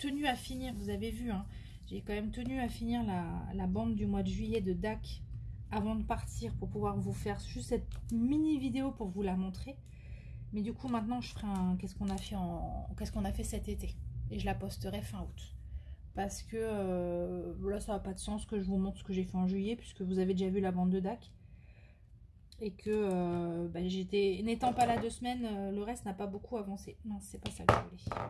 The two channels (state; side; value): identical; both; correlation 1.00